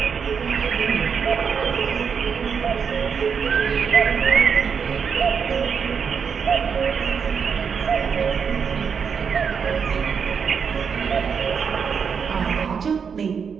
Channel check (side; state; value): left; quieter; 6.5 dB